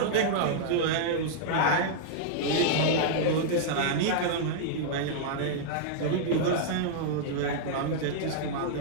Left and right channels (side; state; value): both; different; correlation -0.01